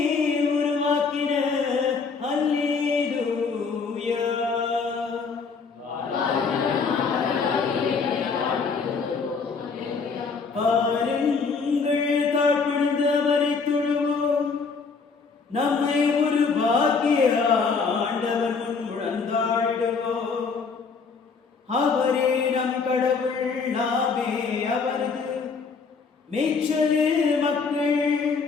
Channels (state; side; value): quieter; right; 5.0 dB